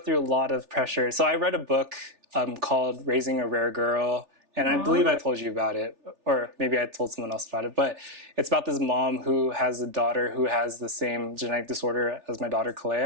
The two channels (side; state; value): left; late; 3.4 ms